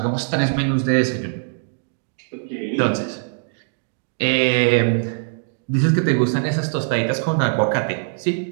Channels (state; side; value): silent; left; digital silence